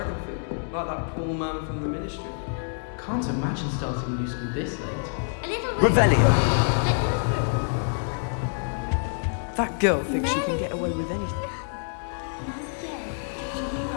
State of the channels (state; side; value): silent; right; digital silence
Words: food, like that poor man from the ministry. Can't imagine starting new school this late. Revelio. That girl thinks she can get away with anything.